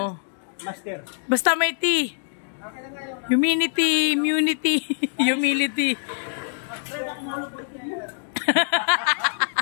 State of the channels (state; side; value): silent; right; digital silence